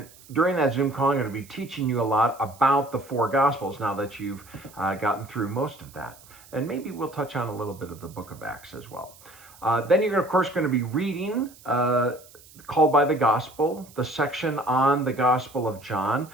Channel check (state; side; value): noise; right; hiss, 23 dB below the sound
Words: during that Zoom call, I'm going to be teaching you a lot about the four Gospels now that you've gotten through most of that. And maybe we'll touch on a little bit of the book of Acts as well. Then you're, of course, going to be reading Called by the Gospel, the section on the Gospel of John.